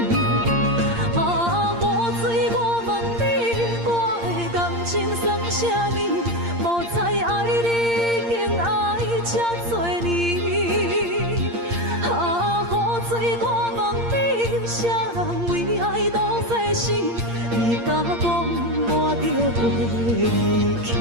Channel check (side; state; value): left; late; 8.6 ms